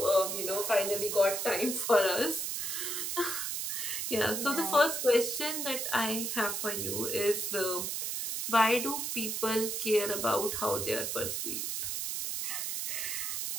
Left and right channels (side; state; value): right; noise; hiss, 2 dB below the sound